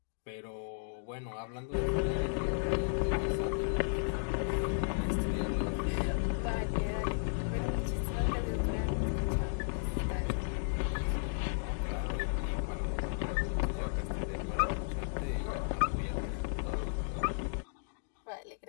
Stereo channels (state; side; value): silent; right; digital silence